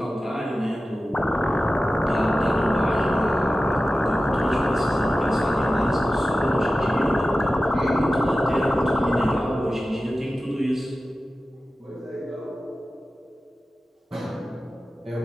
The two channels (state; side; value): normal; both; correlation 0.94